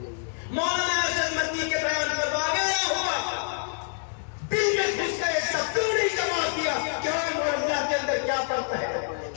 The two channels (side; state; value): right; silent; digital silence